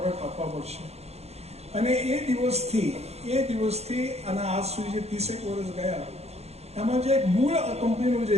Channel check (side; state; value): left; late; 0.31 ms